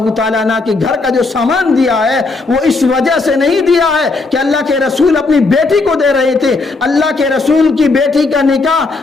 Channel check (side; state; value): right; quieter; 3.7 dB